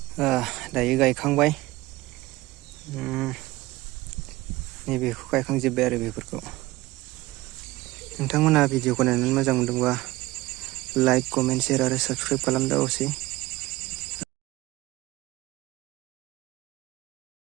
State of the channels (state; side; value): quieter; left; 19.3 dB